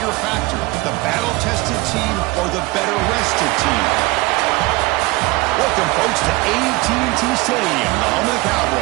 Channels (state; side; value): quieter; left; 22.2 dB